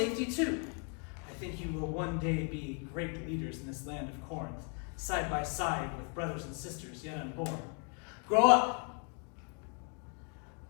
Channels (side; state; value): right; quieter; 39.2 dB